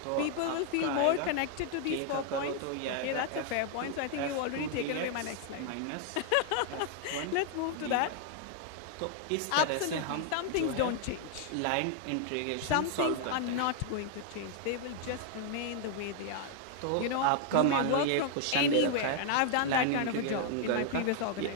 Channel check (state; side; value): different; both; correlation 0.00